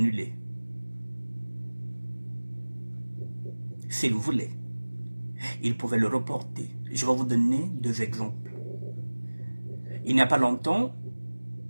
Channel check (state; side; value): inverted; both; correlation -1.00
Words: S'il voulait, il pouvait le reporter. Je vais vous donner 2 exemples. Il n'y a pas longtemps,